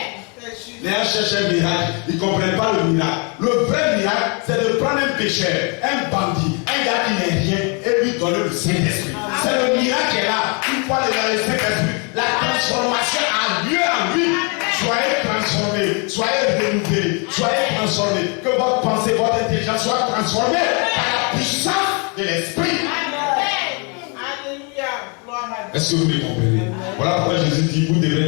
Les gens cherchent un miracle, ils ne comprennent pas le miracle. Le vrai miracle, c'est de prendre un pécheur, un bandit, un gars qui n'est rien, et lui donner le Saint-Esprit. C'est le miracle qui est là. Une fois le Saint-Esprit, la transformation a lieu en lui. Soyez transformés, soyez renouvelés, soyez transformés. Que votre pensée, votre intelligence soit transformée par la puissance de l'Esprit. Est-ce que vous me comprenez? Voilà pourquoi Jésus dit, vous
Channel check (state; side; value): quieter; right; 34.4 dB